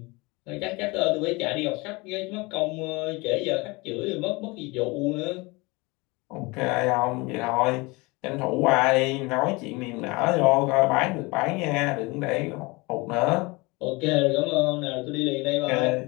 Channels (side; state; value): right; quieter; 25.0 dB